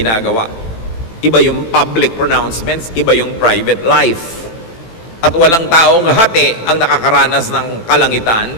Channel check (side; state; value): right; late; 18 ms